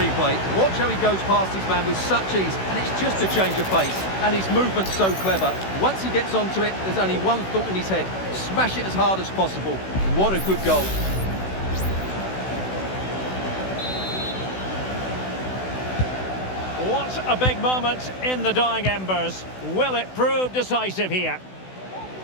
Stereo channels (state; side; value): late; right; 16 ms